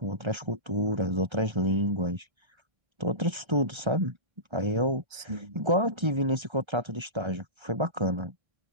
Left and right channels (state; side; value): late; left; 1.3 ms